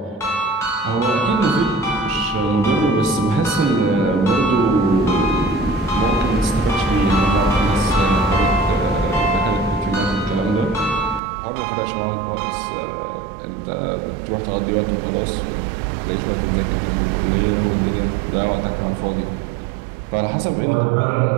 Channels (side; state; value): left; drops out; at 11.2 s